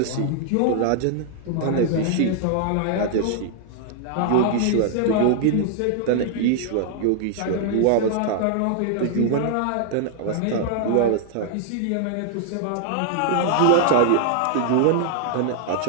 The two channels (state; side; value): different; both; correlation -0.01